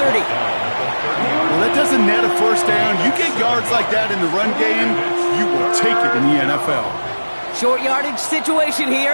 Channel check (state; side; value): inverted; both; correlation -1.00